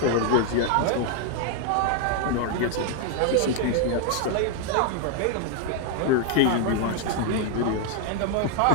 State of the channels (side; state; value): both; different; correlation 0.00